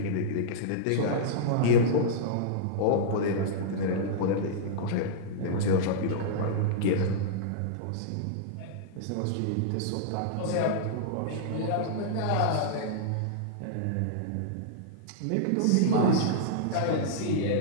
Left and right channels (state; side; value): different; both; correlation -0.02